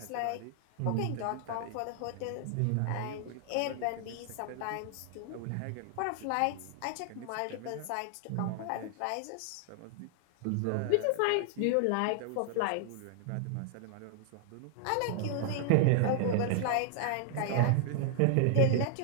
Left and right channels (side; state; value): both; different; correlation 0.00